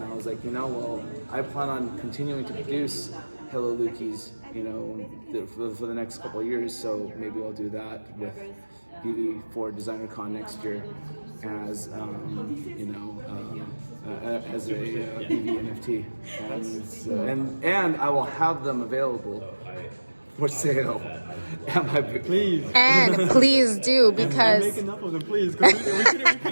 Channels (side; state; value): both; inverted; correlation -1.00